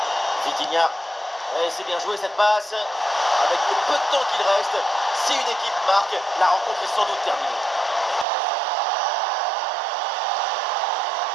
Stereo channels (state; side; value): drops out; left; at 8.2 s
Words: Vitinha. Et c'est bien joué cette passe. Avec le peu de temps qu'il reste, si une équipe marque, la rencontre est sans doute terminée.